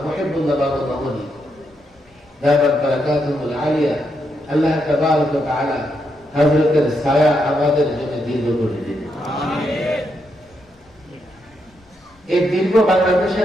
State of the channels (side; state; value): both; normal; correlation 0.81